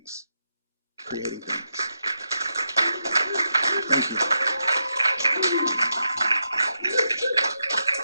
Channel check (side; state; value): both; inverted; correlation -0.86